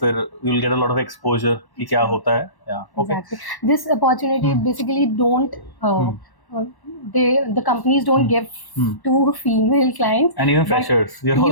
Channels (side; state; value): right; late; 1.1 ms